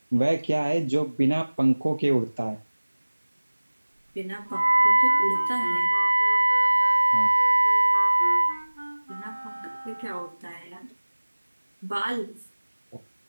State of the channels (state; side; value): inverted; both; correlation -1.00